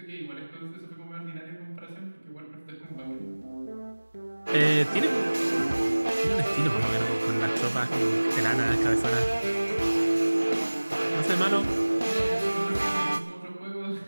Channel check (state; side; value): inverted; both; correlation -1.00